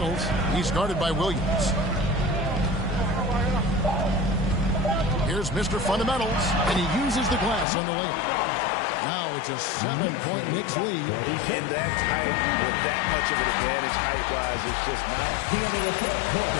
He's guarded by Williams. Here's Mr. Fundamentals, and he uses the glass on the layup. Now it's a 7-point Knicks lead. In that tight, with that much of an advantage height-wise, it's just not. The end of the third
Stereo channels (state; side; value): drops out; right; at 7.7 s